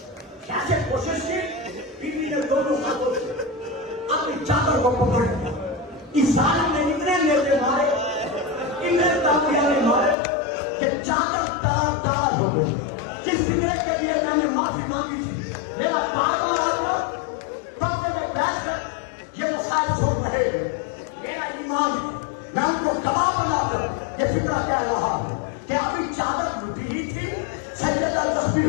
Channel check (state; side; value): drops out; right; at 10.2 s